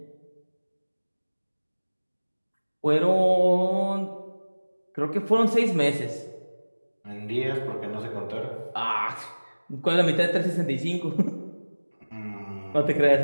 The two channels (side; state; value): both; inverted; correlation -1.00